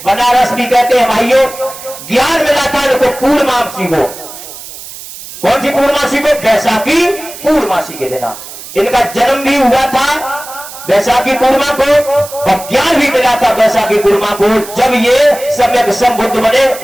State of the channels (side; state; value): right; noise; hiss, 14 dB below the sound